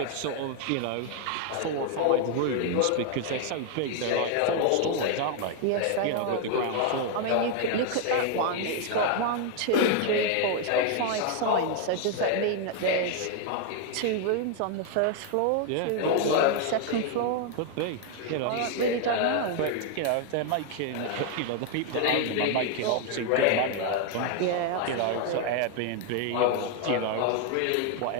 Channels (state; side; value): different; both; correlation 0.00